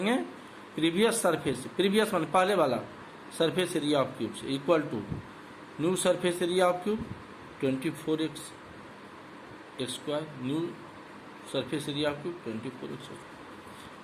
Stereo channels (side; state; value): both; identical; correlation 1.00